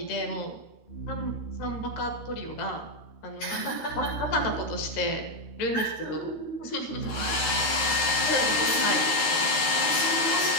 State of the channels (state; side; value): late; right; 13 ms